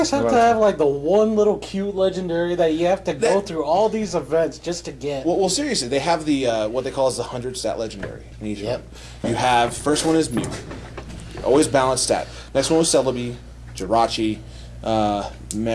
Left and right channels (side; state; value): both; identical; correlation 1.00